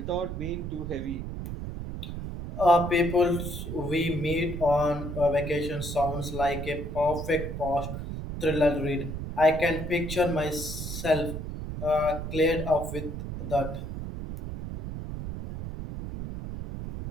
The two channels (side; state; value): right; noise; rumble, 6 dB below the sound